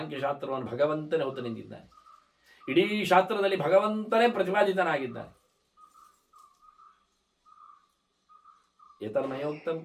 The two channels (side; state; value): both; identical; correlation 1.00